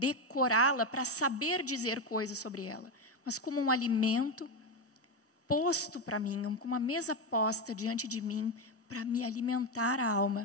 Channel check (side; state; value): both; normal; correlation 0.10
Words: para saber dizer coisas sobre ela, mas como um alimento posto para mim, com uma mesa posta diante de mim para me alimentar a